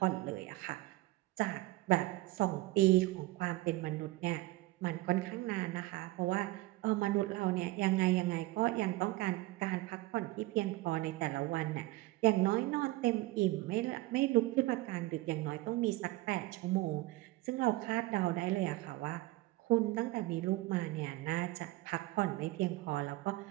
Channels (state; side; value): quieter; left; 19.2 dB